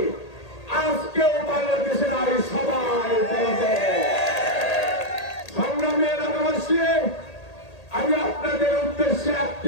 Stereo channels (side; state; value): right; late; 1.8 ms